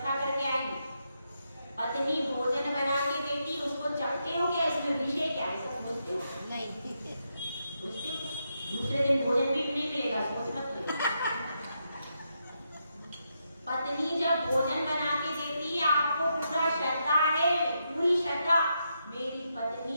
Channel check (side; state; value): both; inverted; correlation -0.82